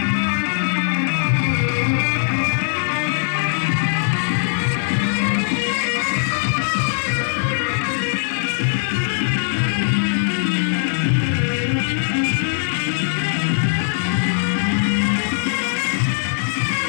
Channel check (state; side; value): silent; right; 66 dB below the other